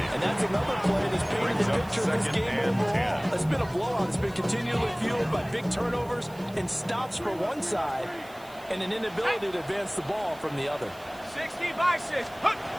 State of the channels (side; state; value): right; noise; hiss, 23 dB below the sound